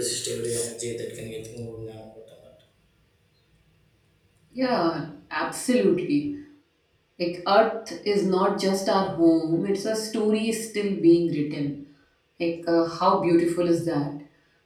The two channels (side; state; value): both; identical; correlation 1.00